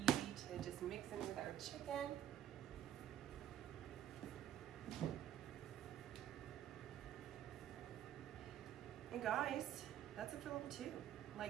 to just mix in with our chicken. And guys, that's it for level 2.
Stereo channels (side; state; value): left; quieter; 11.0 dB